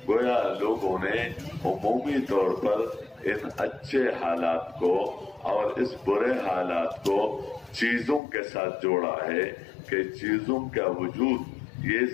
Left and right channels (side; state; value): right; drops out; at 8.2 s